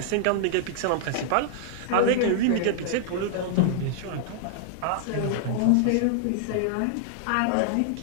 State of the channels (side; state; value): both; different; correlation -0.01